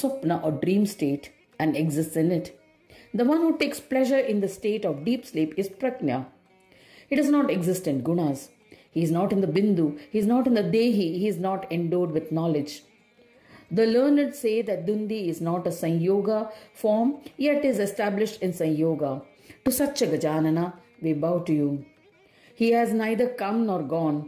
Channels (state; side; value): identical; both; correlation 1.00